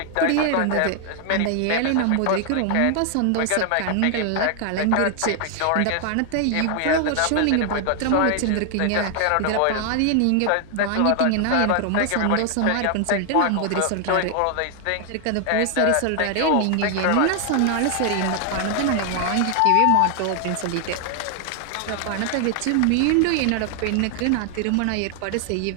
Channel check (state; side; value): different; both; correlation 0.00